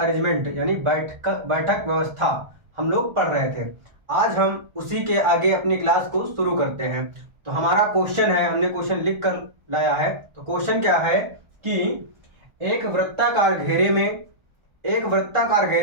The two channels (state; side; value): late; left; 1.3 ms